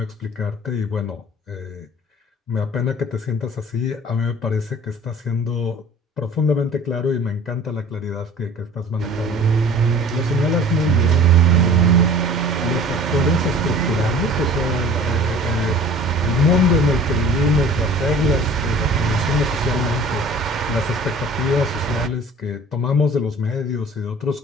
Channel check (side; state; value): both; normal; correlation 0.45